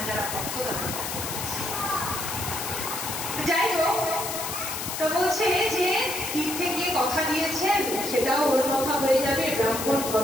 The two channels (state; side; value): noise; left; hiss, 5 dB below the sound